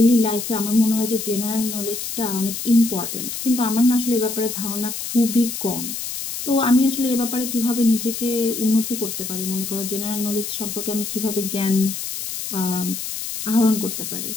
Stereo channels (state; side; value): noise; left; hiss, 6 dB below the sound